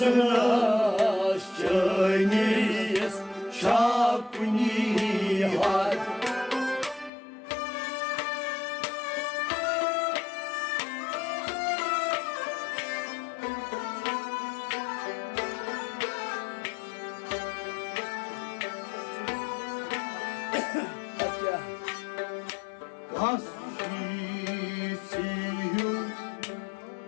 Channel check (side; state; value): right; drops out; at 7.1 s